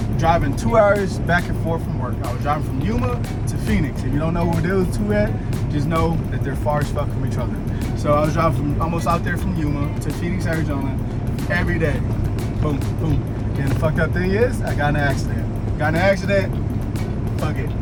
driving 2 hours back and forth from work. I was driving from Yuma to Phoenix. If you don't know where those two at, just know that they're far as fuck from each other. So I was driving from almost out there from Yuma to Phoenix, Arizona every day. Boom, boom. And the fucked up thing is, I got in an accident. Fuck it.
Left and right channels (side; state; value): both; identical; correlation 1.00